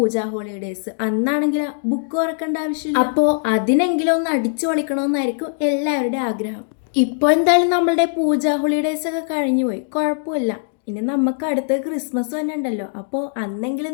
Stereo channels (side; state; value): right; silent; digital silence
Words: ഹോളിഡേയ്സ്. അന്നാണെങ്കിൽ ബുക്ക് തുറക്കേണ്ട ആവശ്യമില്ല. അപ്പോൾ അതിനെങ്കിലും ഒന്ന് അടിച്ചു പൊളിക്കണമെന്നായിരിക്കും എല്ലാവരുടെയും ആഗ്രഹം. ഇപ്പോൾ എന്തായാലും നമ്മളുടെ പൂജ ഹോളിഡേയ്സ് ഒക്കെ കഴിഞ്ഞു പോയി, കുഴപ്പമില്ല. ഇനി നമുക്ക് അടുത്ത ക്രിസ്മസ് തന്നെ ഉണ്ടല്ലോ. അപ്പോൾ അന്നെങ്കിലും